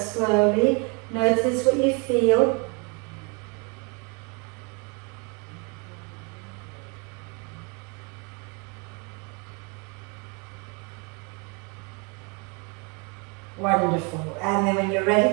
Notice what you feel. Wonderful. And then when you're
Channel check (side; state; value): left; quieter; 32.7 dB